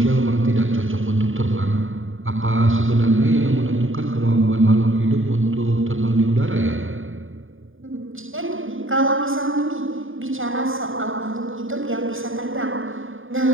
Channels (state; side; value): late; left; 0.59 ms